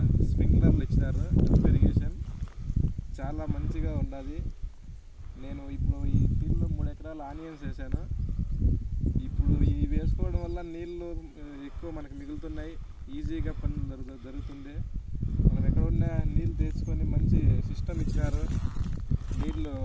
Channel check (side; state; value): both; identical; correlation 1.00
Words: స్ప్రింక్లర్లు ఇచ్చినారు. డ్రిప్ ఇరిగేషన్ చాలా మంచిగా ఉండాలి. నేను ఇప్పుడు ఈ ఫీల్డ్లో 3 ఎకరాలు ఆనియన్స్ వేసాను. ఇప్పుడు ఇవి వేసుకోవడం వల్ల నీళ్ళు ఎక్కువ మనకు మిగులుతున్నాయి. ఈజీగా పని జరుగుతుంది. మనం ఎక్కడ ఉన్నా నీళ్ళు తెచ్చుకొని మంచి సిస్టమ్ ఇచ్చినారు. నీళ్ళు